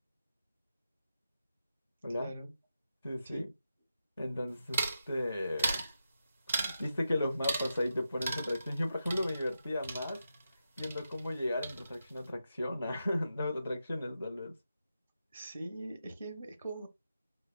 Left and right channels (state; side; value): inverted; both; correlation -0.88